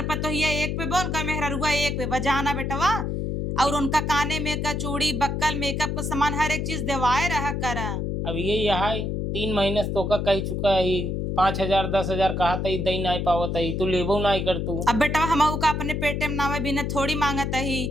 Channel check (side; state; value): left; noise; hum, 1 dB below the sound